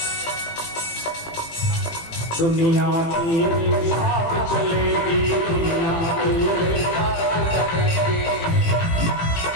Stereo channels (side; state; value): right; late; 18 ms